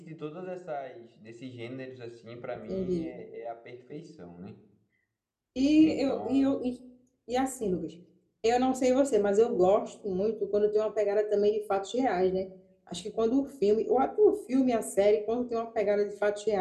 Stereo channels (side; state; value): both; identical; correlation 1.00